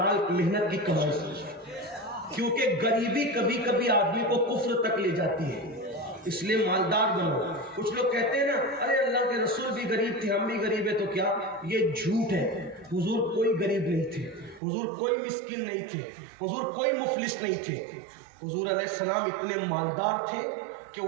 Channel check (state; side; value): drops out; left; at 14.6 s